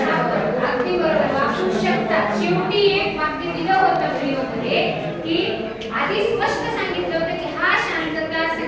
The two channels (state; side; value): identical; both; correlation 1.00